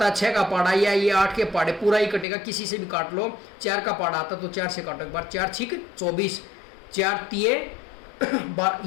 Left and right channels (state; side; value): drops out; right; at 2.2 s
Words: है, 6 का पाड़ा, या ये 8 के पाड़े पूरा ही कटेगा, किसी से भी काट लो। 4 का पाड़ा आता तो 4 से काटो एक बार, 4 छिक 24, 4 तिये